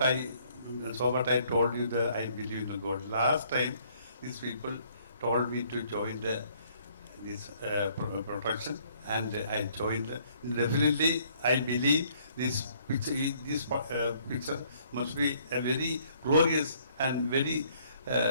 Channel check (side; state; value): both; inverted; correlation -0.63